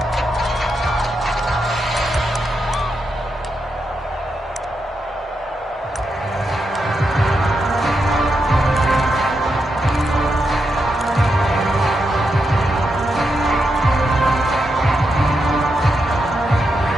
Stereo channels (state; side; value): normal; both; correlation 0.84